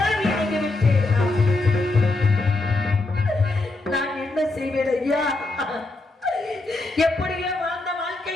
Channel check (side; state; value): right; quieter; 3.1 dB